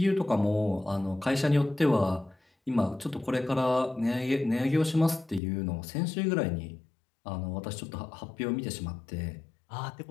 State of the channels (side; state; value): right; drops out; at 5.4 s